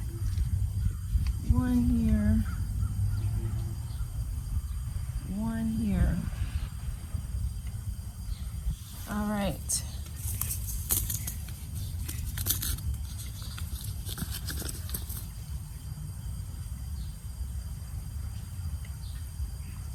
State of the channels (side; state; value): both; identical; correlation 1.00